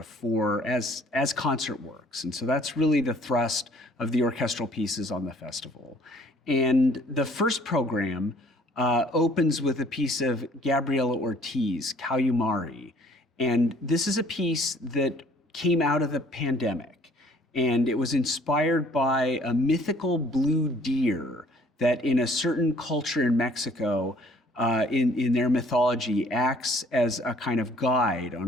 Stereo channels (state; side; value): normal; both; correlation 0.57